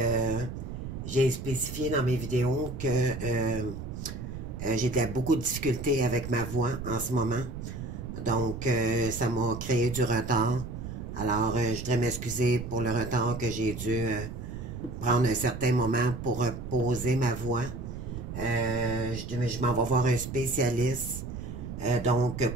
j'ai spécifié dans mes vidéos que j'ai beaucoup de difficultés avec ma voix en ce moment. Donc, ça m'a créé du retard. Alors, je voudrais m'excuser pour le retard que j'ai dû prendre un certain moment pour reposer ma voix. Je m'en vais voir un spécialiste, donc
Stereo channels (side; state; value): right; noise; rumble, 8 dB below the sound